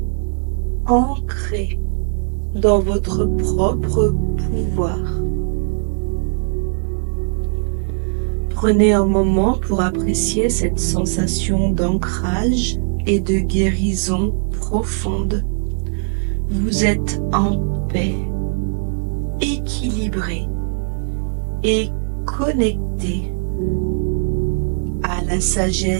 ancré dans votre propre pouvoir. Prenez un moment pour apprécier cette sensation d'ancrage et de guérison profonde. Vous êtes en paix, équilibré et connecté à la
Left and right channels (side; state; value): left; silent; 64 dB below the other